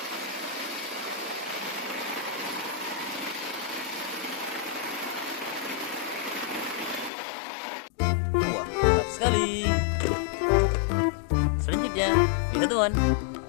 Wah, mantap sekali. Selanjutnya, lihat teman.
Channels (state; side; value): drops out; right; at 7.1 s